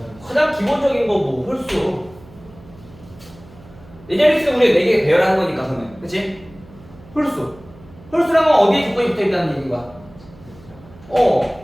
가장 기본적인 거 뭐 홀수. 네 자릿수는 우리가 4개 배열하는 거니까 그러면 그치? 홀수. 홀수란 건 어디에 조건이 붙어있다는 얘기인 거야?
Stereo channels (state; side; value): noise; right; hum, 23 dB below the sound